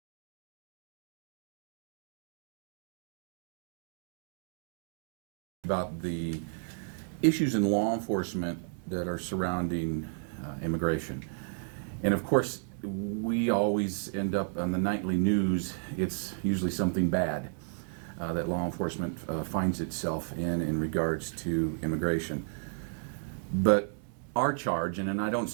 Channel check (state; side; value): silent; left; 56 dB below the other